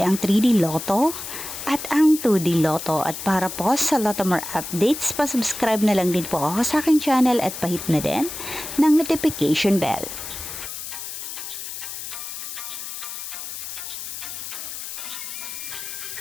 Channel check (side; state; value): left; noise; hiss, 8 dB below the sound